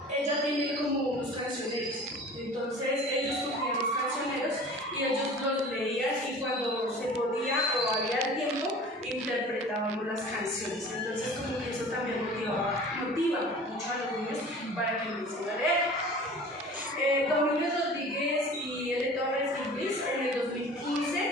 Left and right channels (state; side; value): normal; both; correlation 0.43